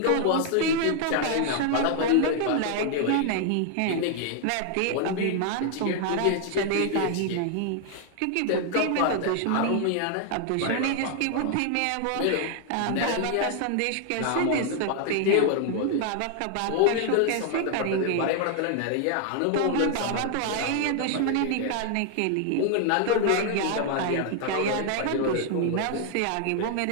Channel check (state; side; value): different; both; correlation 0.00